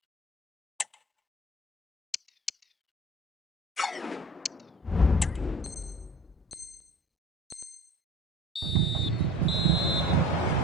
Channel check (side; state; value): both; normal; correlation 0.42